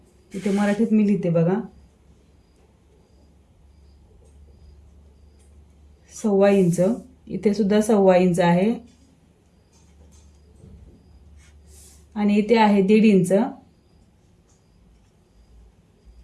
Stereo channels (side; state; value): both; identical; correlation 1.00